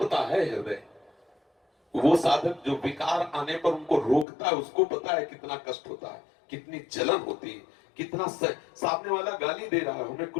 है हृदय। वो साधक जो विकार आने पर उनको रोकता है, उसको पता है कितना कष्ट होता है, कितनी जलन होती है, कितना सामने वाला गाली दे रहा है, हमें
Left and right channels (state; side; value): drops out; right; at 4.2 s